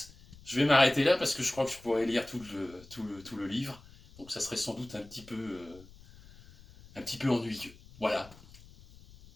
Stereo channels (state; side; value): noise; left; rumble, 22 dB below the sound